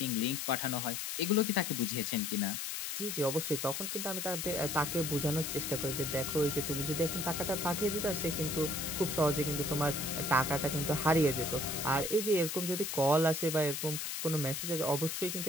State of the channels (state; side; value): noise; left; hiss, 3 dB below the sound